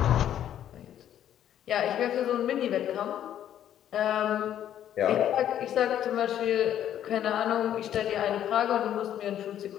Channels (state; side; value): quieter; right; 10.7 dB